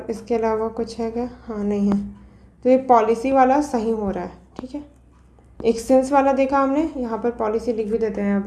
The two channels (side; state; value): both; identical; correlation 1.00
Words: इसके अलावा कुछ है क्या? हाँ, नहीं है, तो ये पॉलिसी वाला सही हो रहा है, ठीक है। एक सेंस वाला देखा हमने, यहाँ पर पॉलिसी लिख भी देते हैं